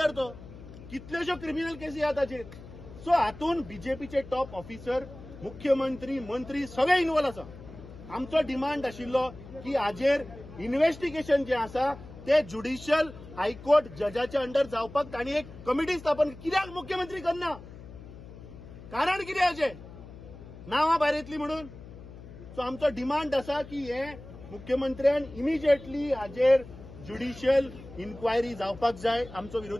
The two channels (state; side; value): noise; left; hum, 16 dB below the sound